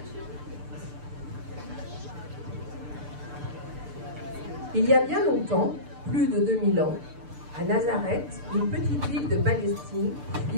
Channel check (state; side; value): late; left; 6.8 ms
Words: Il y a bien longtemps, plus de 2000 ans, à Nazareth, une petite ville de Palestine,